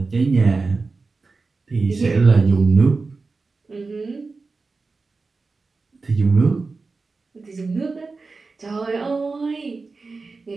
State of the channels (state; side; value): quieter; left; 4.0 dB